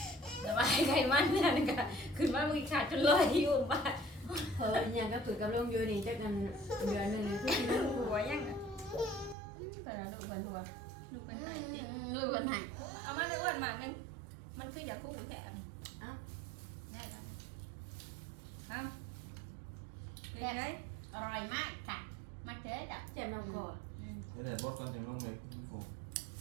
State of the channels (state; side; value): drops out; left; at 9.3 s